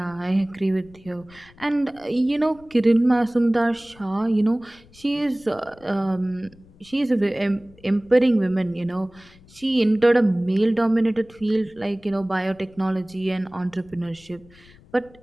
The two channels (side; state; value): left; noise; rumble, 26 dB below the sound